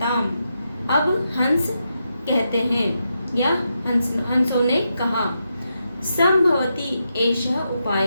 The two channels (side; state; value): both; inverted; correlation -0.85